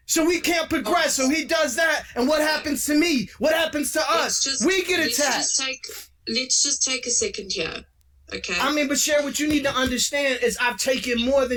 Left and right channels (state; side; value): identical; both; correlation 1.00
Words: So we can't progress. So he does that. And what happens to me? What happens to us? We get attacked. Let's just take a second here. Okay. I mean, but Cherie, what you need to understand is I've taken more